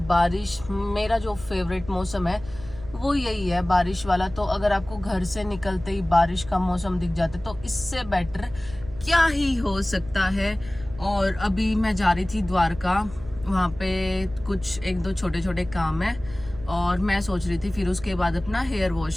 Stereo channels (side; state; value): right; noise; hum, 16 dB below the sound